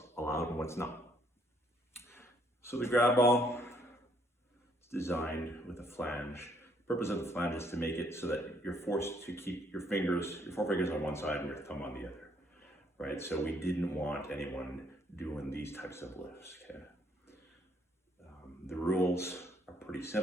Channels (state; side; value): normal; both; correlation 0.68